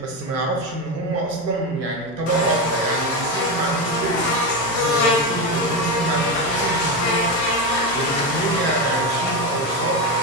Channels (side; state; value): both; normal; correlation 0.14